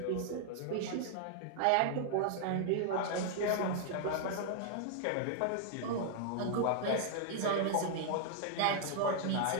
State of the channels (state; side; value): different; both; correlation 0.00